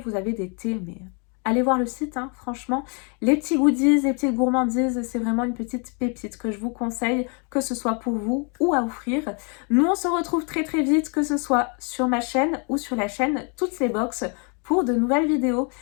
avez des thés, mais allez voir le site, hein, franchement. Les petits goodies, les petites gourmandises, c'est vraiment une petite pépite que je vous conseille, que ce soit pour vous ou à offrir. Nous, on se retrouve très vite, que ce soit sur ma chaîne ou sur la chaîne Toutes les Box pour de nouvelles vidéos.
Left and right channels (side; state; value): right; quieter; 36.3 dB